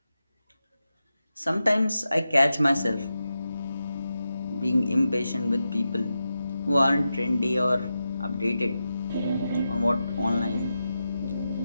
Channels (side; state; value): both; inverted; correlation -0.90